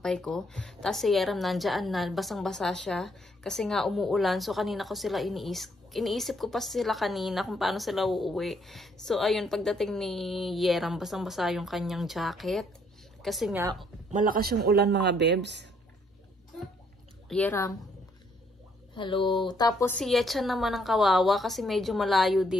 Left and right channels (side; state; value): both; normal; correlation 0.69